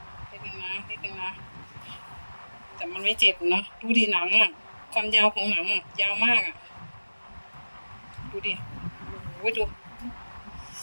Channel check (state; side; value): inverted; both; correlation -1.00